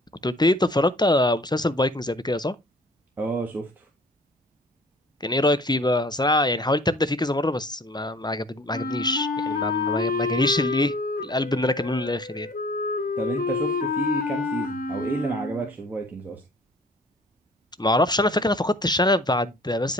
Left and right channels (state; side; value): normal; both; correlation 0.50